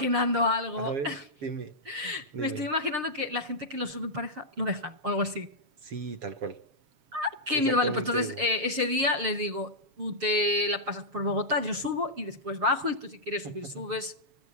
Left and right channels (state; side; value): late; left; 7.3 ms